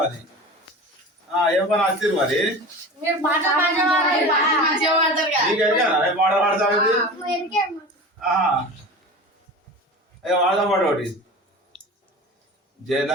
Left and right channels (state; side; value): normal; both; correlation 0.34